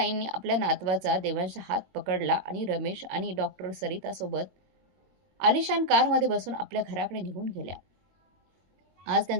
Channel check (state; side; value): late; left; 22 ms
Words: आपल्या नातवाचा देवांशचा हात पकडला आणि रमेश आणि डॉक्टर सरितासोबत आलिशान कारमध्ये बसून आपल्या घराकडे निघून गेल्या. आज